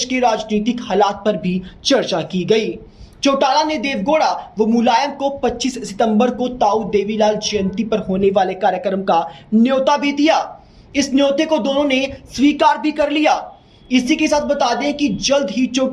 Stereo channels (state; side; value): identical; both; correlation 1.00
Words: के राजनीतिक हालात पर भी चर्चा की गई। चौटाला ने देवगौड़ा व मुलायम को 25 सितंबर को ताऊ देवीलाल जयंती पर होने वाले कार्यक्रम का न्योता भी दिया। इस न्योते को दोनों ने स्वीकार भी कर लिया। इसी के साथ बता दें कि जल्द ही